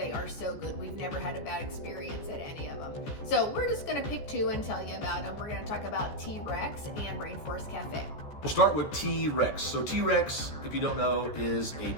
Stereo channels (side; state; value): right; late; 14 ms